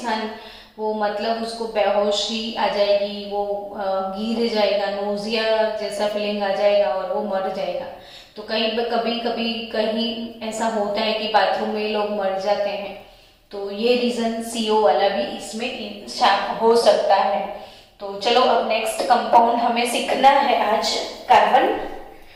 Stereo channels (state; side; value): identical; both; correlation 1.00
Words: वो मतलब उसको बेहोशी आ जाएगी, वो गिर जाएगा, नोजिया जैसा फीलिंग आ जाएगा और वो मर जाएगा। तो कहीं कभी कभी कहीं ऐसा होता है कि बाथरूम में लोग मर जाते हैं। तो ये रीजन सीओ वाला भी इसमें हो सकता है। तो चलो अब नेक्स्ट कंपाउंड हमें सीखना है आज कार्बन